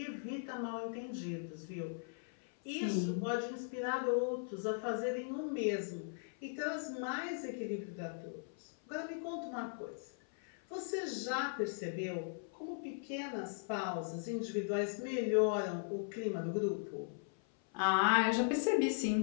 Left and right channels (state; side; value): silent; right; 52 dB below the other